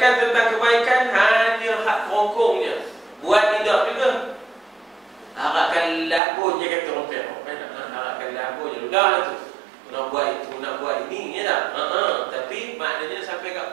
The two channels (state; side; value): drops out; left; at 6.2 s